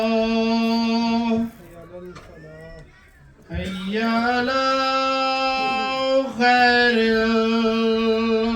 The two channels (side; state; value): both; identical; correlation 1.00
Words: حي على خير